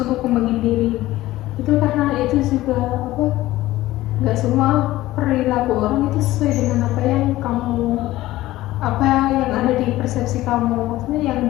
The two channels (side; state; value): right; quieter; 16.4 dB